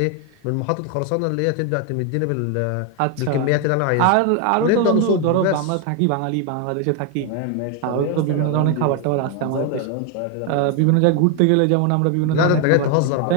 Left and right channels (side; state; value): both; different; correlation 0.01